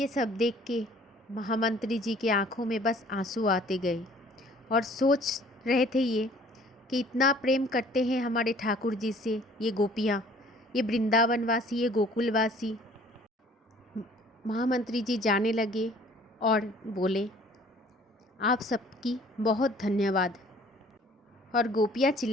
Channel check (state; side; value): normal; both; correlation 0.54